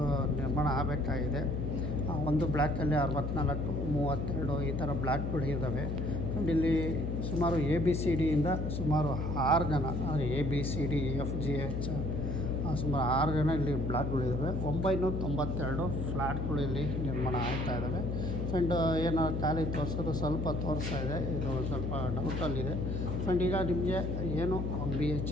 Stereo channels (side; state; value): left; noise; hum, 2 dB below the sound